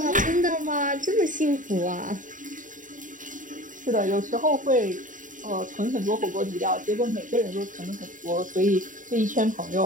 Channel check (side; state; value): left; late; 0.38 ms